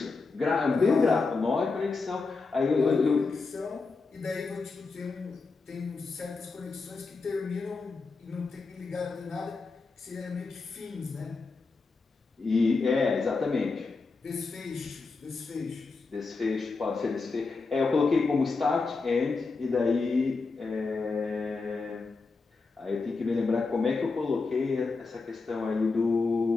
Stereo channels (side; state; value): right; quieter; 4.2 dB